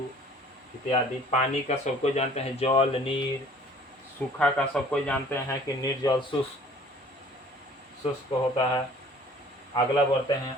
इत्यादि। पानी का सबको जानते हैं जल, नीर। सूखा का सबको जानते हैं कि निर्जल, शुष्क होता है। अगला बढ़ते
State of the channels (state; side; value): normal; both; correlation 0.52